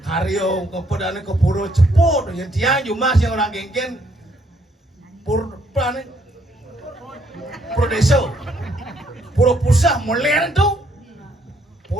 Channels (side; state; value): both; normal; correlation 0.70